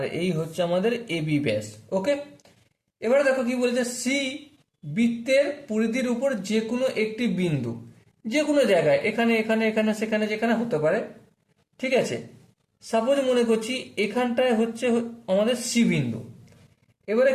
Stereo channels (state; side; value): identical; both; correlation 1.00